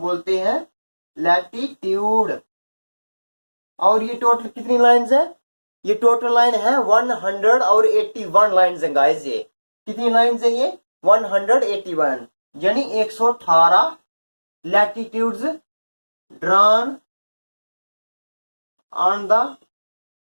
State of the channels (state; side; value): inverted; both; correlation -1.00